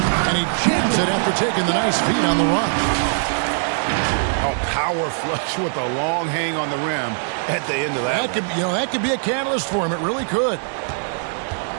and he jams it after taking the nice feed on the run. Oh, power flush with a long hang on the rim at the end of that. That could be a catalyst for him. It really could.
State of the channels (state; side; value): silent; left; digital silence